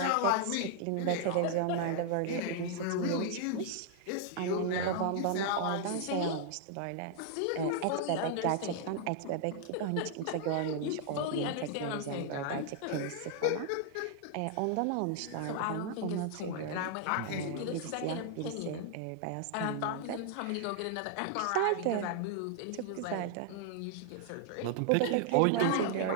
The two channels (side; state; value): both; different; correlation 0.00